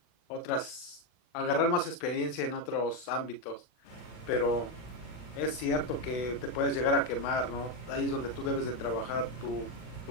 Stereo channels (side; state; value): right; late; 40 ms